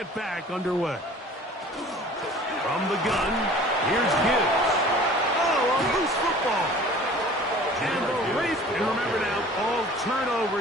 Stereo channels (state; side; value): normal; both; correlation 0.46